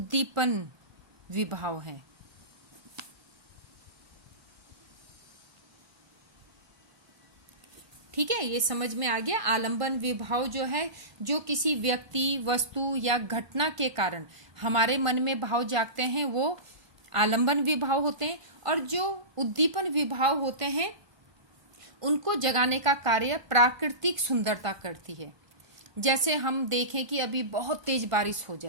विभाव हैं। ठीक है, ये समझ में आ गया। आलंबन विभाव जो है, जो किसी व्यक्ति, वस्तु या घटना के कारण हमारे मन में भाव जागते हैं, वो आलंबन विभाव होते हैं। और जो उद्दीपन विभाव होते हैं, उनको जगाने का कार्य प्राकृतिक सुंदरता करती है। जैसे हम देखें कि अभी बहुत तेज बारिश हो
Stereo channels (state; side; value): late; left; 1.2 ms